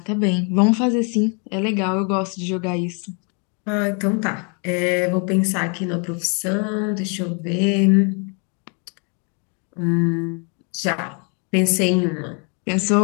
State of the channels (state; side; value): quieter; right; 37.1 dB